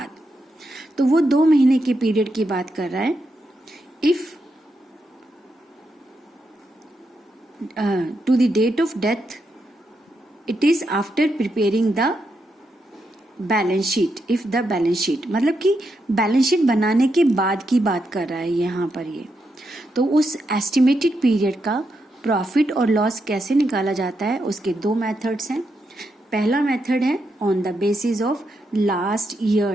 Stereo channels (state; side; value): normal; both; correlation 0.83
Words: तो वो 2 महीने के पीरियड की बात कर रहा है। If to the date of death it is after preparing the balance sheet, if the balance sheet मतलब कि बैलेंस शीट बनाने के बाद की बात कर रहा है यहाँ पर ये। तो उस एस्टिमेटेड पीरियड का प्रॉफिट और लॉस कैसे निकाला जाता है, उसके 2 मेथड्स हैं। पहला मेथड है on the basis of last